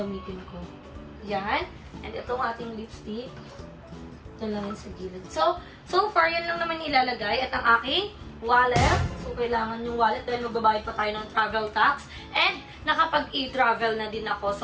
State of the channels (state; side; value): identical; both; correlation 1.00